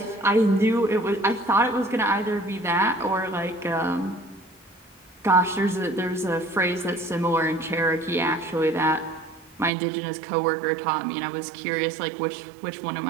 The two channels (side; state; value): left; drops out; at 9.7 s